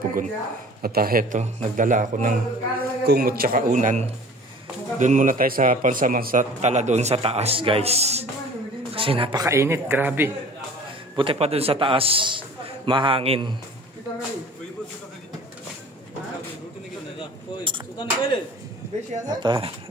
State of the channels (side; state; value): both; normal; correlation 0.45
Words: At heto, nagdala ako ng kumot tsaka unan. Doon muna tayo sa pansamantala doon sa taas guys. Kasi napakainit, grabe. Buti pa doon sa taas, mahangin. At